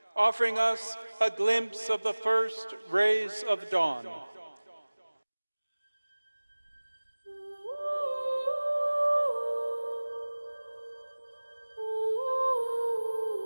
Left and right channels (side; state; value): both; inverted; correlation -1.00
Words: offering us a glimpse of the first rays of dawn.